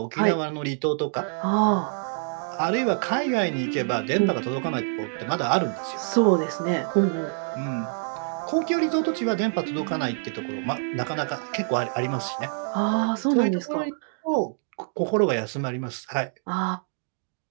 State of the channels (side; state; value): left; silent; 61 dB below the other